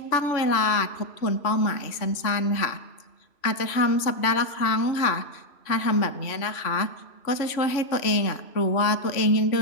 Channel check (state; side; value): late; right; 3.0 ms